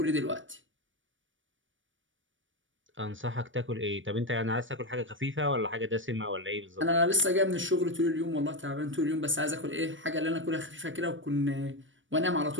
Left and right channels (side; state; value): left; late; 0.56 ms